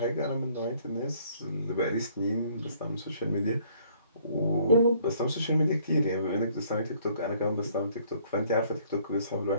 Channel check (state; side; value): inverted; both; correlation -0.62